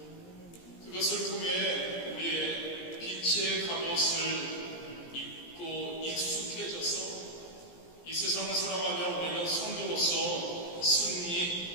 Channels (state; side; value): late; right; 17 ms